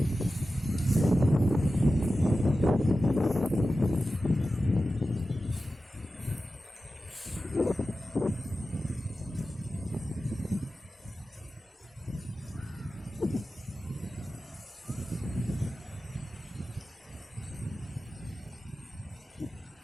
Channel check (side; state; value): both; normal; correlation 0.94